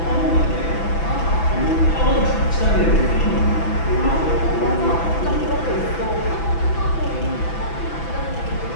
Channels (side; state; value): right; late; 6.0 ms